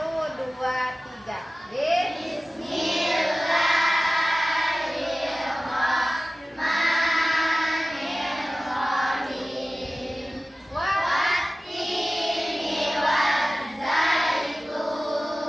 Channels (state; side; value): normal; both; correlation 0.97